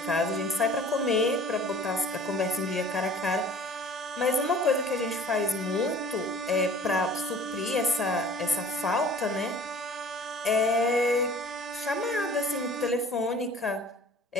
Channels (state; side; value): normal; both; correlation 0.47